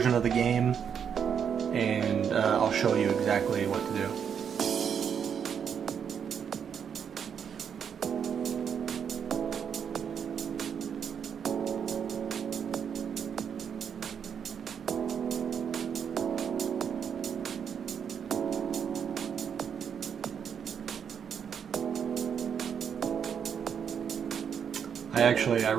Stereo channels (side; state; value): left; quieter; 7.6 dB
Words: of the game, and I'll show you exactly what to do. I